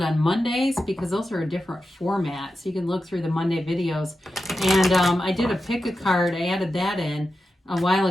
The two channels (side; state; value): both; normal; correlation 0.91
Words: on Mondays because those are a different format. So you can look through the Monday videos. And I did a pick a card. I added that in a while